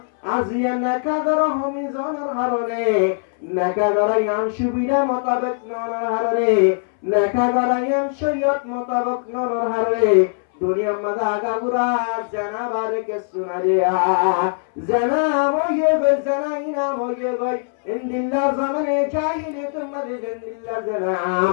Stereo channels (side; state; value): right; silent; 61 dB below the other